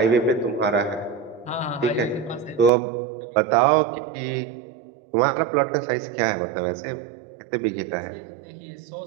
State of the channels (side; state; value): left; drops out; at 2.7 s